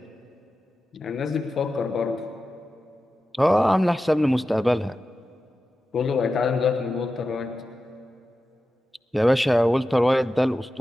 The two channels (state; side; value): normal; both; correlation 0.93